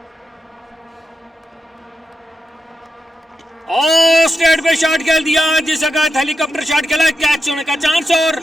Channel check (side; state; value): both; normal; correlation 0.87